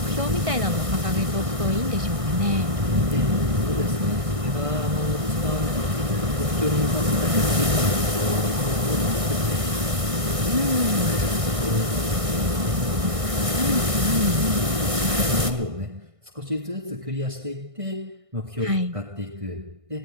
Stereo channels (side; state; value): left; late; 1.6 ms